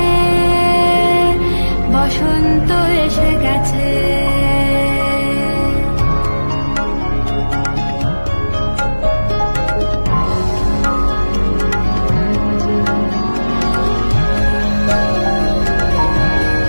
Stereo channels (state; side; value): inverted; both; correlation -1.00